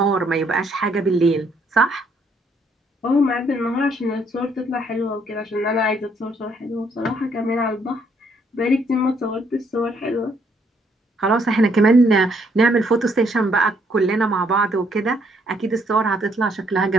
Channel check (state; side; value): normal; both; correlation 0.69